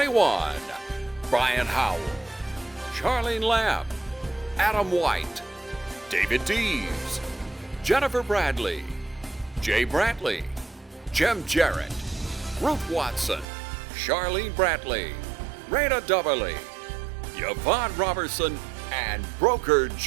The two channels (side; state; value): left; drops out; at 13.5 s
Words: Brian Howell, Charlene Lamb, Adam White, David Deves, Jennifer Bradley, Jay Brantley, Jim Jarrett, Ruth Watson, Charlene Brantley, Raina Dubberly, Yvonne Robertson, and broker